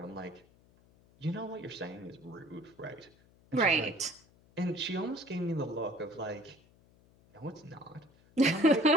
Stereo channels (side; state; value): left; noise; hum, 29 dB below the sound